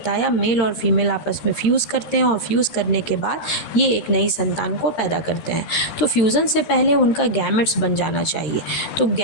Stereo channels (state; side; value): late; right; 13 ms